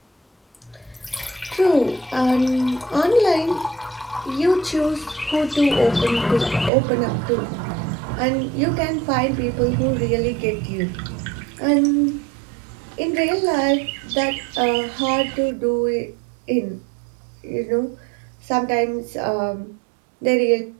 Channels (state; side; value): drops out; left; at 6.7 s